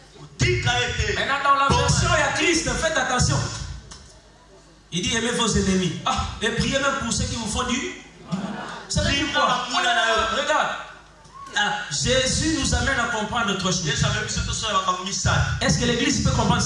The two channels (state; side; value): identical; both; correlation 1.00